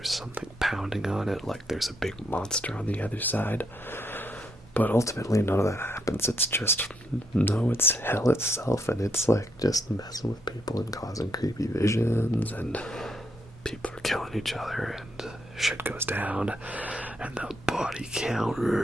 something pounding on it like there's a big monster on the other side. But ultimately none of that happens. It's just, no, it's hell itself, and it's like just messing with people and causing creepy visions, and people are killing each other and shit goes down and the body count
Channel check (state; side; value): normal; both; correlation 0.76